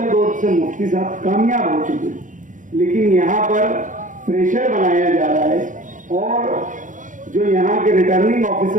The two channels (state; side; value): late; left; 0.37 ms